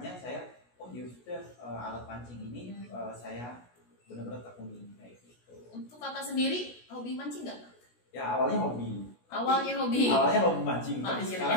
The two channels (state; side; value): late; right; 16 ms